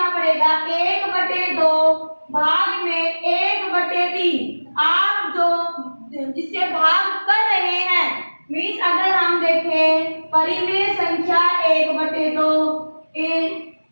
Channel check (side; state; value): both; inverted; correlation -1.00